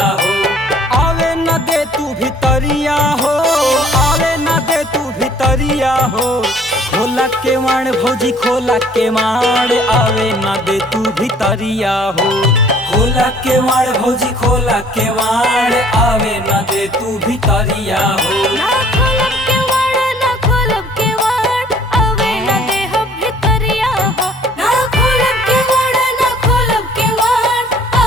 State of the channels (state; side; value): normal; both; correlation 0.56